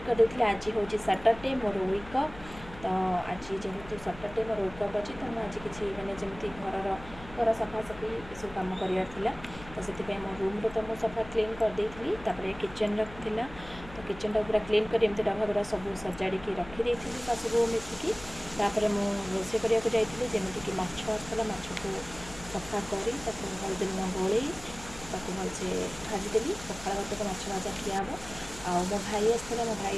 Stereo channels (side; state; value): left; noise; hum, 17 dB below the sound